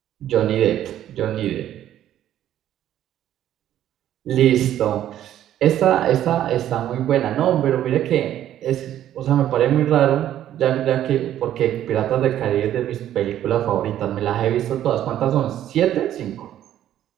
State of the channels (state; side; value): quieter; left; 11.7 dB